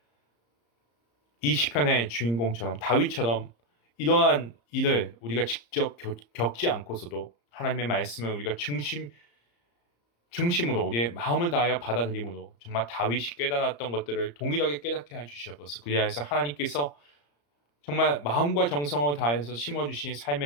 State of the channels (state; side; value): late; right; 34 ms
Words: 이 시편의 주인공처럼 다윗처럼 이러한 일을 우리가 직접 겪지 않고서도 하나님의 말씀을 우리가 중심으로 우리의 마음을 다하여 받아들임으로 정말 다윗이 깨달았던 것들을 동일하게 깨닫게 해주시옵소서. 그리하여서 하나님께서 정말 마음과 정성을 다해서 심어주신